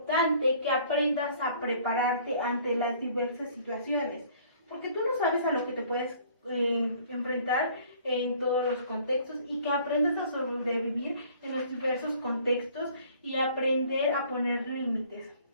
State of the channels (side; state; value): both; inverted; correlation -0.55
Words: que aprendas a prepararte ante las diversas situaciones, porque tú no sabes a lo que te puedes enfrentar en todos los contextos y que aprendas a sobrevivir en los diversos contextos y aprender a poner límites.